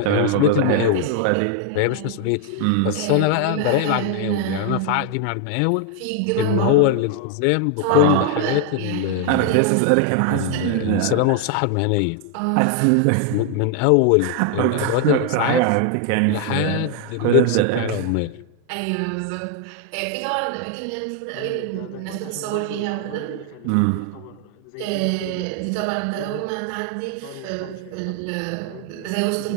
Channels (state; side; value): different; both; correlation 0.00